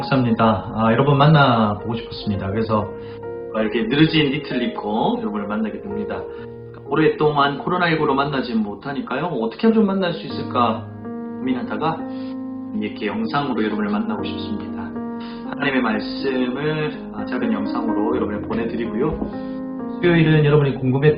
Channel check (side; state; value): both; identical; correlation 1.00